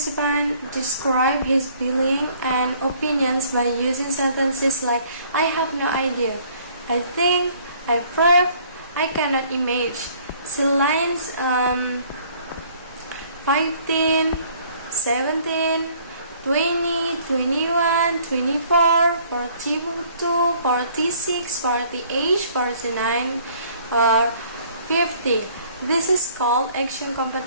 described his feelings and opinions by using sentences like, "I have no idea," "I think," "I prove," "I cannot imagine." See lines 15, 17, 20, 21, 24, 42, 46, 48, 49, or 50. This is called action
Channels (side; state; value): both; inverted; correlation -0.59